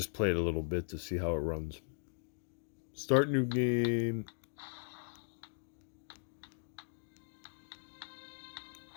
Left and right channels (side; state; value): right; silent; digital silence